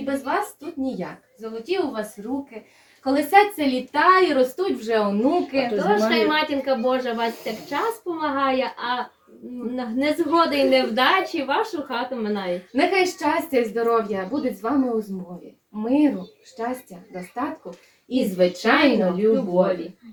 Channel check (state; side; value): identical; both; correlation 1.00